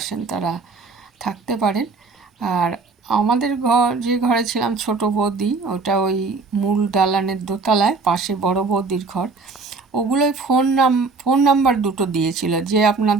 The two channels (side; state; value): left; quieter; 4.2 dB